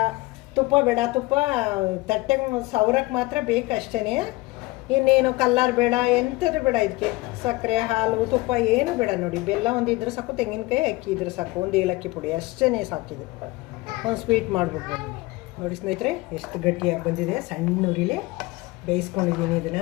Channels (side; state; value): right; quieter; 21.5 dB